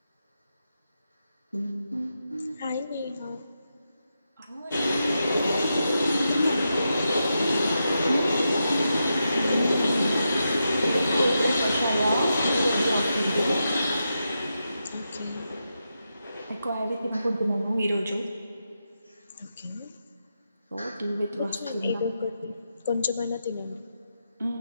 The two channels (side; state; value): both; inverted; correlation -0.87